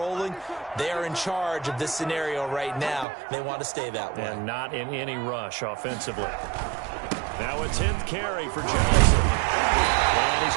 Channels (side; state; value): left; drops out; at 3.1 s